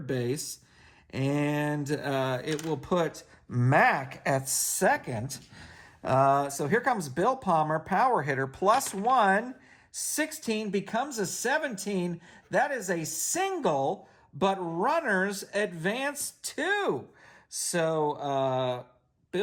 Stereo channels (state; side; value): identical; both; correlation 1.00